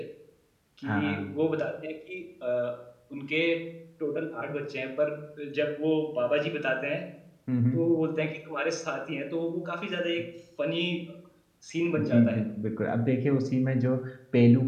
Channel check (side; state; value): both; identical; correlation 1.00